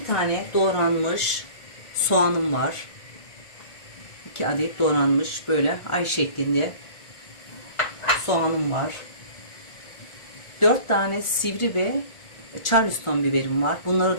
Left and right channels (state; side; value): late; right; 1.4 ms